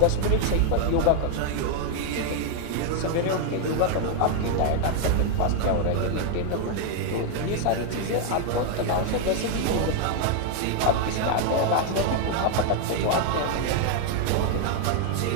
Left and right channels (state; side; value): different; both; correlation 0.00